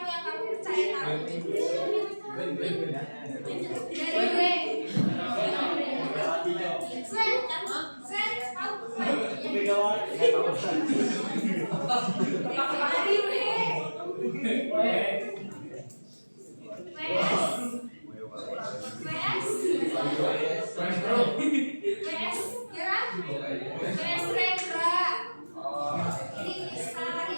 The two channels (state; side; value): inverted; both; correlation -1.00